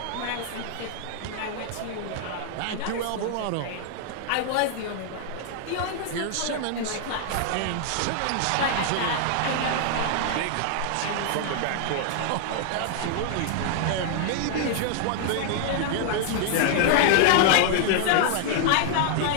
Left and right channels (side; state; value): both; different; correlation 0.00